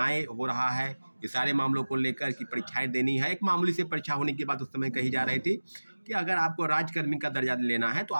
हो रहा है, ये सारे मामलों को लेकर कि परीक्षाएं देनी है। एक मामूली से परीक्षा होने की बात उस समय कही जा रही थी कि अगर आपको राज्यकर्मी का दर्जा लेना है तो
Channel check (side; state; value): both; inverted; correlation -1.00